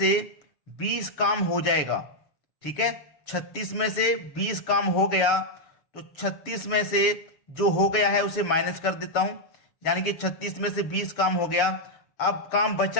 20 काम हो जाएगा। ठीक है, 36 में से 20 काम हो गया तो 36 में से जो हो गया है उसे माइनस कर देता हूं। यानी कि 36 में से 20 काम हो गया। अब काम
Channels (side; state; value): right; late; 6.8 ms